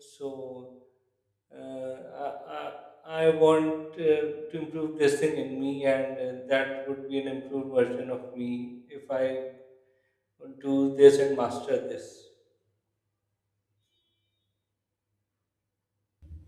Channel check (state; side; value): identical; both; correlation 1.00